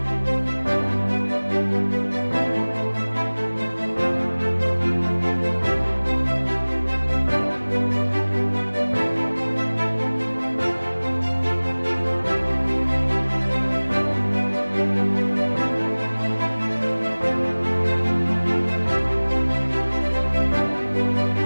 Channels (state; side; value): inverted; both; correlation -1.00